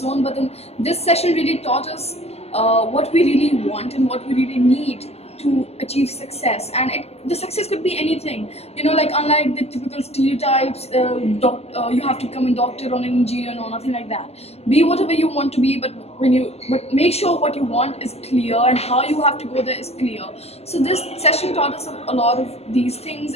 But then this session really taught us what we really want and what we really need to achieve success, and the success could be anything. Like unlike the typical stereotypes, you have to become a doctor or an engineer, no, nothing like that. Be whatever you want to be, but make sure what you want is clear and how you have to go there is clear. So this session taught us a lot of these things,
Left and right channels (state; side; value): late; right; 0.30 ms